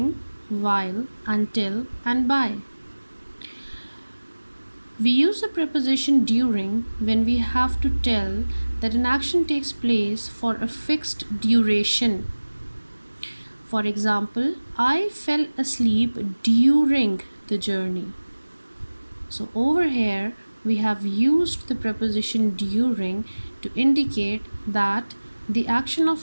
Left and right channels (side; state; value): both; inverted; correlation -1.00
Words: while, until, and by. We use the preposition during when we have to tell that an action takes place for a fixed duration. For example, I fell asleep during the journey. So over here we have used the preposition during to indicate that the action of